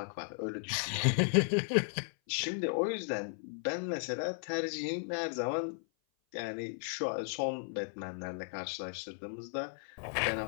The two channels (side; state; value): right; silent; 54 dB below the other